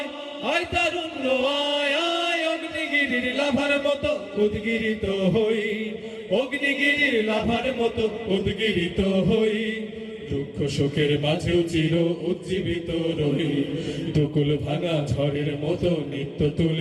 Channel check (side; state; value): both; identical; correlation 1.00